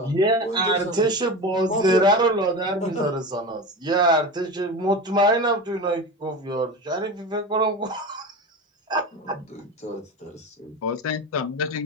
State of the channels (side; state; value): both; normal; correlation 0.26